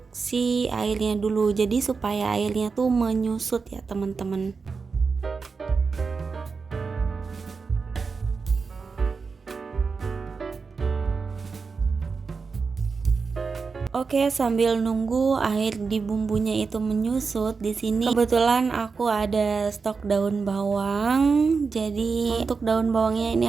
si airnya dulu, jadi supaya airnya tuh menyusut ya teman-teman. Oke, sambil nunggu air di bumbunya itu menyusut, di sini kebetulan aku ada stok daun bawang. Jadi untuk daun bawangnya ini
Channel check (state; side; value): quieter; left; 4.9 dB